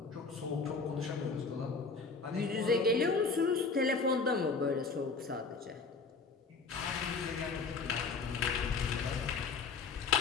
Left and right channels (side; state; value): right; quieter; 4.5 dB